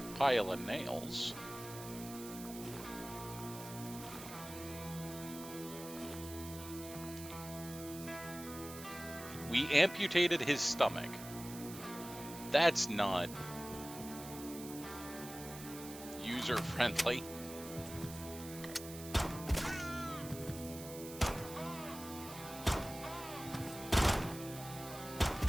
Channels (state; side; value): noise; right; hiss, 12 dB below the sound